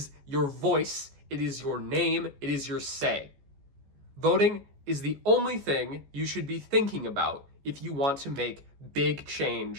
your voice, it is your name, it is your say. Voting is the only thing you should be thinking about if you want to make big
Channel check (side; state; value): left; late; 14 ms